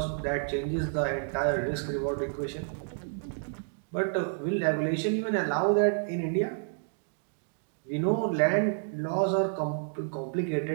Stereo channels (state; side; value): silent; left; digital silence